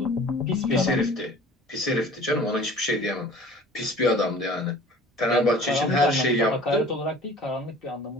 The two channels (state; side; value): normal; both; correlation 0.47